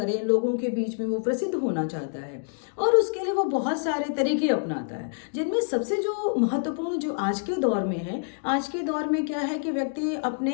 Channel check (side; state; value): right; silent; digital silence